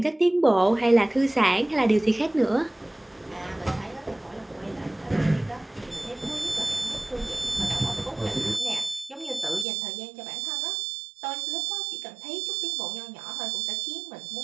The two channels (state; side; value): drops out; left; at 9.7 s